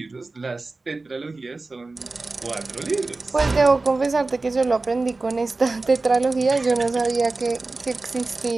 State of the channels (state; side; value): quieter; left; 3.5 dB